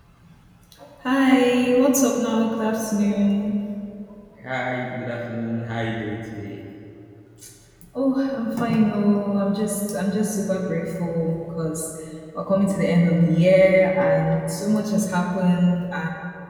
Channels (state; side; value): identical; both; correlation 1.00